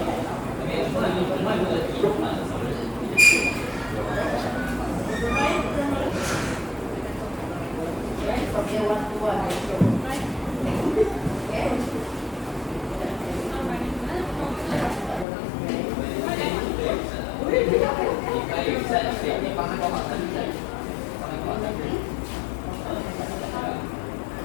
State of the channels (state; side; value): drops out; right; at 15.2 s